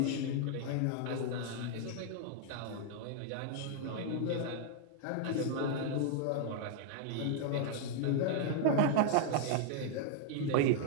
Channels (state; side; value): different; both; correlation 0.00